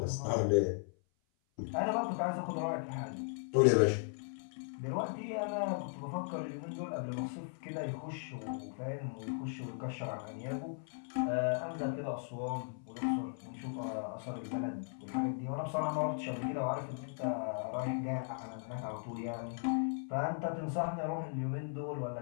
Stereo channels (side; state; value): right; silent; 53 dB below the other